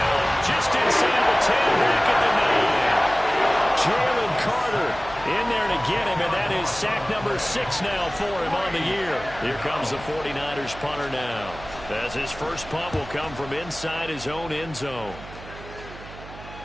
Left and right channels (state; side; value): noise; right; hum, 16 dB below the sound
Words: Just inside the 10, back at the 9. Jalen Carter in there to get him, and that is sack number 6 now for him on the year. Here comes the 49ers punter now, as his first punt will come from inside his own end zone.